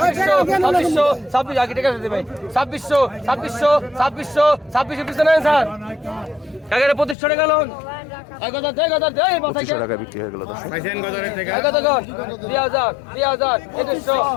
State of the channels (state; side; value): drops out; right; at 7.2 s